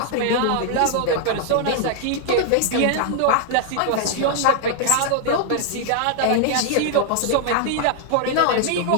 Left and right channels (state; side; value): different; both; correlation 0.00